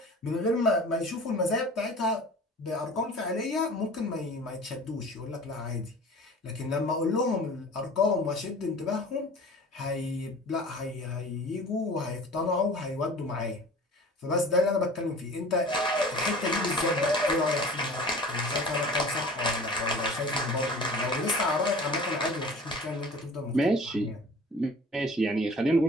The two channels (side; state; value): both; normal; correlation 0.43